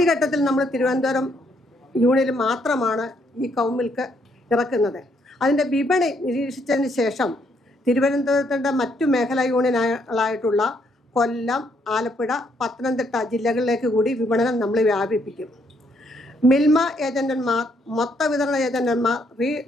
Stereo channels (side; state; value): both; normal; correlation 0.72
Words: നമ്മൾ തിരുവനന്തപുരം യൂണിയനിൽ മാത്രമാണ് ഈ കൗമിൽക്ക് ഇറക്കുന്നത്. അതിൻ്റെ വിപണി നിരീക്ഷിച്ചതിന് ശേഷം തിരുവനന്തപുരത്തിൻ്റെ മറ്റു മേഖലാ യൂണിയനുകളായിട്ടുള്ള കൊല്ലം, ആലപ്പുഴ, പത്തനംതിട്ട ജില്ലകളിലേക്ക് കൂടി വിപണനം നമ്മൾ വ്യാപിപ്പിക്കും. മിൽമ ഏജന്റന്മാർ, മൊത്ത വിതരണ ഏജന്റന്മാർ,